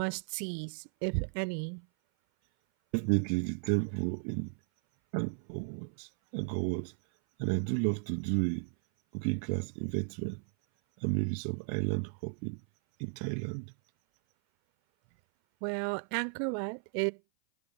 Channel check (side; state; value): left; silent; 55 dB below the other